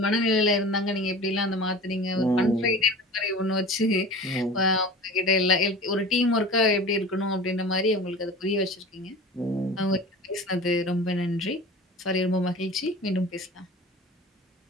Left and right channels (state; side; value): normal; both; correlation 0.36